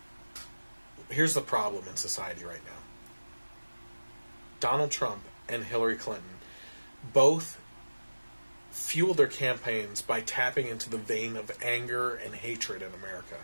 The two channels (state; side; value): inverted; both; correlation -1.00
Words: problem in society right now. Donald Trump and Hillary Clinton both fuel their campaigns by tapping into the vein of anger and hatred in America